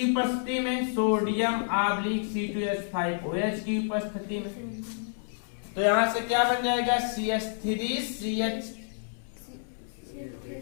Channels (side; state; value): right; silent; 59 dB below the other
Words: उपस्थिति में, सोडियम C2H5OH की उपस्थिति में। तो यहां से क्या बन जाएगा, CH3CH2OH,